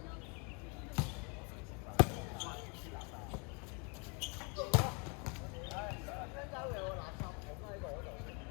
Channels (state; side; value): quieter; right; 33.8 dB